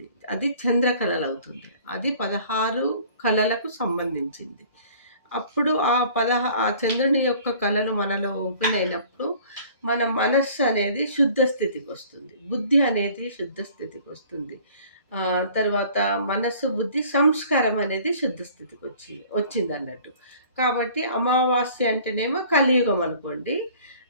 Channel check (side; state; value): both; inverted; correlation -0.51